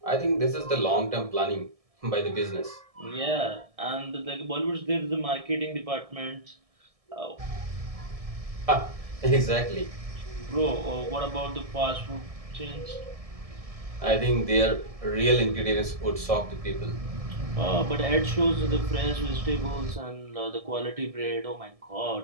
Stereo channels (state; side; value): late; left; 1.7 ms